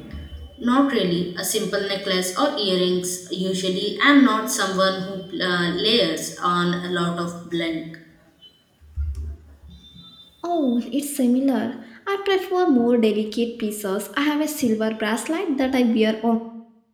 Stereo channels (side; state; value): both; identical; correlation 1.00